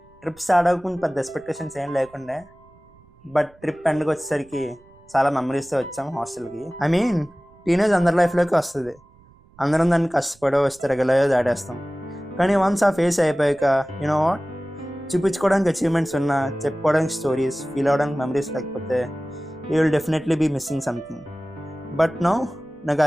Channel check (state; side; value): noise; right; rumble, 29 dB below the sound